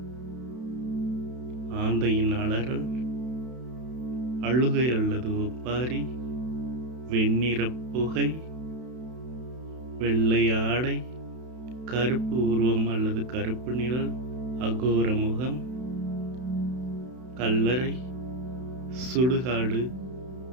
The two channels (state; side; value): late; left; 32 ms